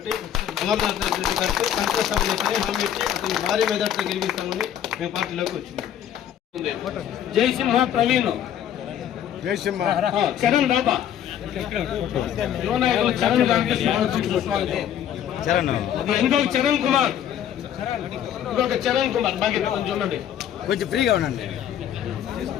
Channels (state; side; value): quieter; right; 10.2 dB